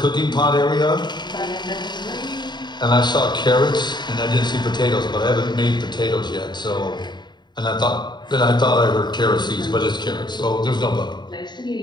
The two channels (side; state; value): right; late; 0.21 ms